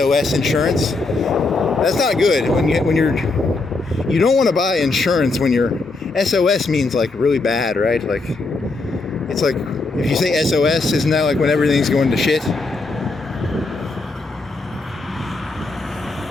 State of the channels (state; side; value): quieter; right; 3.5 dB